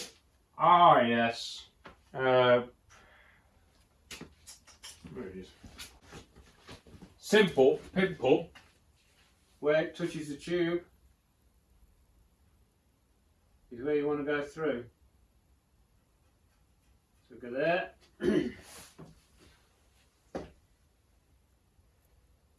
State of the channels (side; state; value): both; identical; correlation 1.00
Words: Ah, yes. Where it is. simple pimple where it touches the tube is where you want to go through. So go there. And